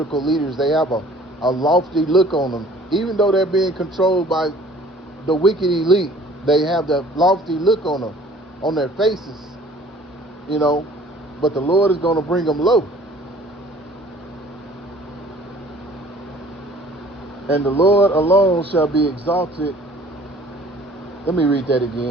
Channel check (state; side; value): normal; both; correlation 0.52